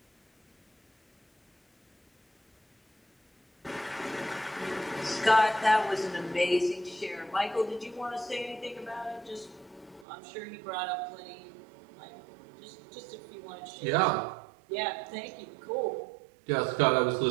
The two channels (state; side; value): drops out; left; at 10.1 s